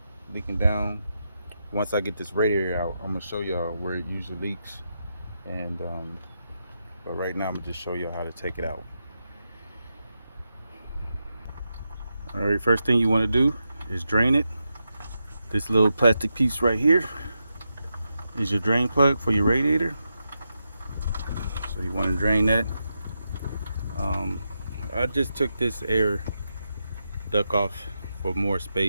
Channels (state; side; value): inverted; both; correlation -0.86